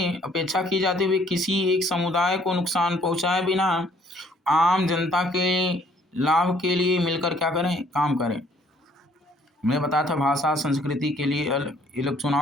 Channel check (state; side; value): normal; both; correlation 0.62